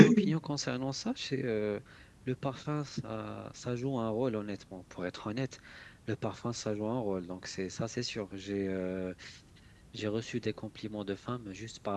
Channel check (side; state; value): both; identical; correlation 1.00